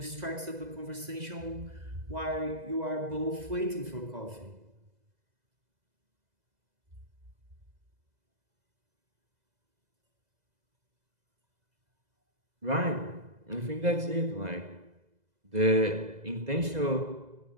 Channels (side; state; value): left; late; 2.0 ms